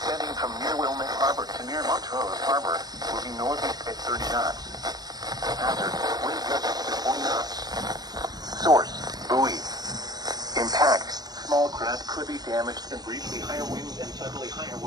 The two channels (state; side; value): late; left; 0.19 ms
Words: from near Wilmette Harbor to near Montrose Harbor, moving northeast at 30 knots. Hazard, wind gusts to 40 knots. Source, buoy. Impact, small craft could be damaged and briefly higher winds and suddenly higher